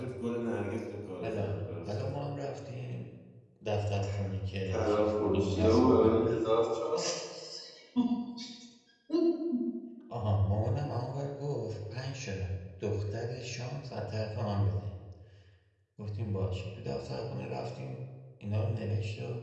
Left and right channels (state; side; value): identical; both; correlation 1.00